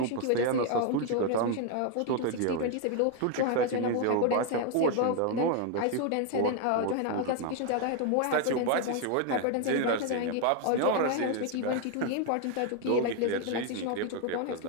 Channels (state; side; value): different; both; correlation 0.01